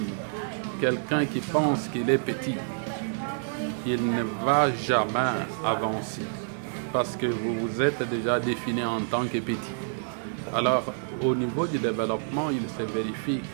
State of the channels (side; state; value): left; silent; digital silence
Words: quelqu'un qui pense qu'il est petit, il ne va jamais avancer. Parce que vous vous êtes déjà défini en tant que petit. Alors, au niveau du développement, il se vérifie